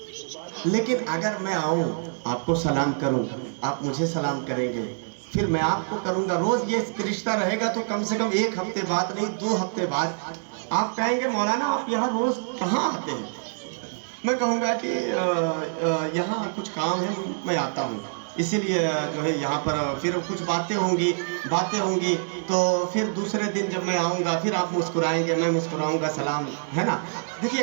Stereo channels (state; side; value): silent; left; digital silence